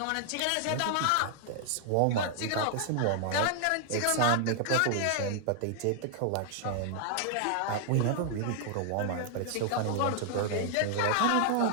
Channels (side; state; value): both; different; correlation 0.00